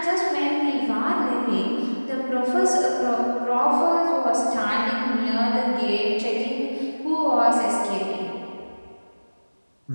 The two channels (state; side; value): inverted; both; correlation -1.00